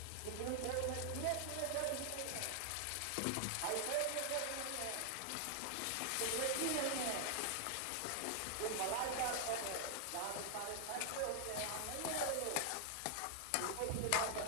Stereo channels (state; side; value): different; both; correlation 0.00